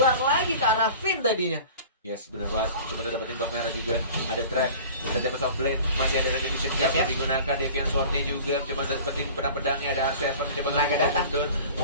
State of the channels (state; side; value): inverted; both; correlation -0.41